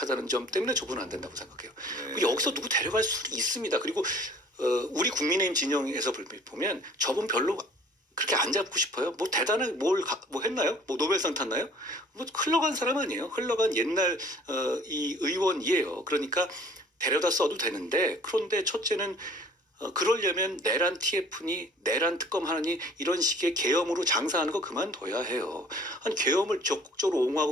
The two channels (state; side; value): normal; both; correlation 0.52